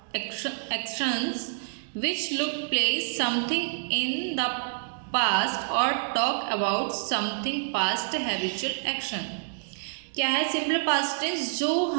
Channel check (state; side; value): silent; left; digital silence